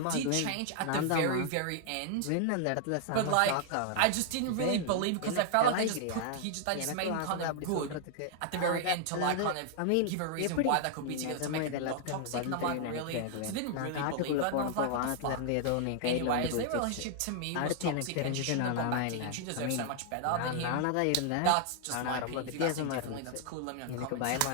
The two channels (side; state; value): both; different; correlation 0.00